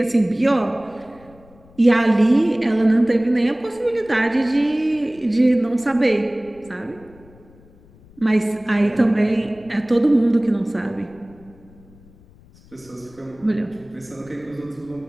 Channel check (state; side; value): noise; left; rumble, 26 dB below the sound